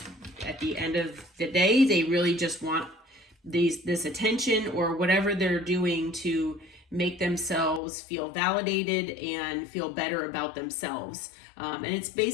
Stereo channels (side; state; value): right; drops out; at 7.8 s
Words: at the end of the day, they really just want this attention or whatever they're doing to make themselves feel validated and feel better about themselves. And it's